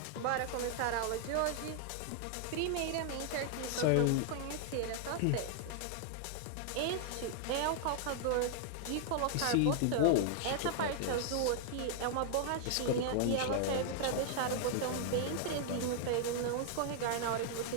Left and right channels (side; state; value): both; different; correlation 0.00